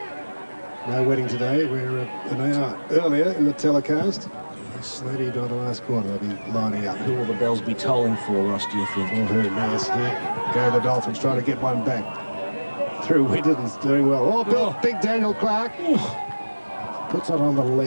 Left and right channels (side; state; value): both; inverted; correlation -1.00